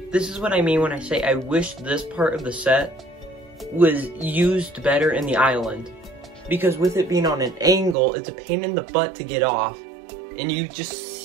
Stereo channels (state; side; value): drops out; left; at 8.0 s